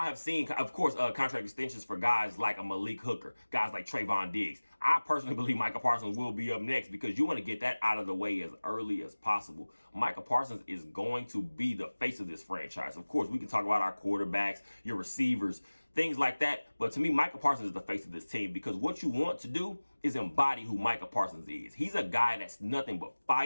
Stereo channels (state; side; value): inverted; both; correlation -1.00